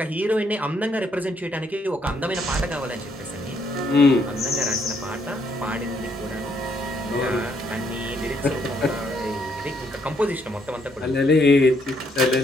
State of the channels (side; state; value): both; normal; correlation 0.72